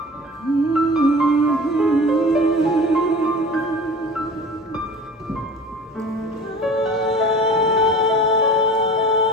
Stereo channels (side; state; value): both; normal; correlation 0.40